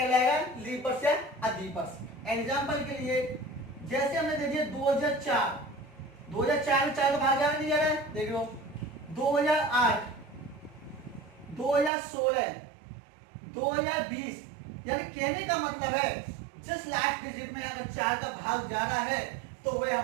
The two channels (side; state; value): left; drops out; at 11.9 s